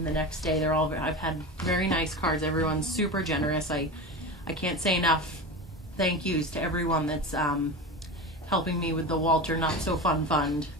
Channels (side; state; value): both; normal; correlation 0.27